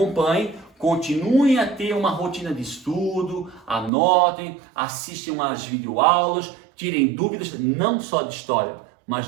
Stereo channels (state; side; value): drops out; left; at 3.9 s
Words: Continuem a ter uma rotina de estudo, anotem, assistam às videoaulas, tirem dúvidas não só de história,